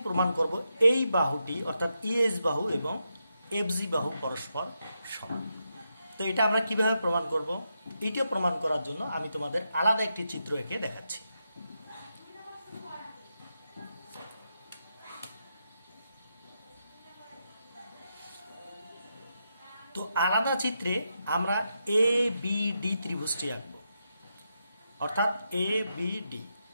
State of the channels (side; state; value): both; inverted; correlation -0.84